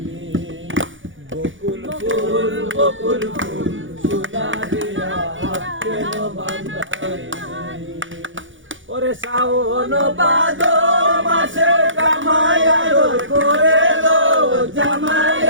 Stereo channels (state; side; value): late; left; 0.56 ms